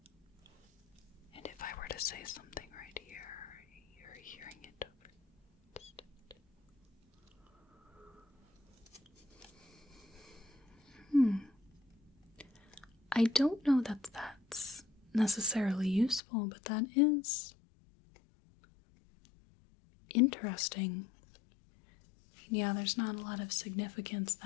And if I were to say something right here, you're hearing it over distant. I don't know that that's necessarily useful, but that is interesting. Yeah, there's not a lot of significance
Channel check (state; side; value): drops out; right; at 16.2 s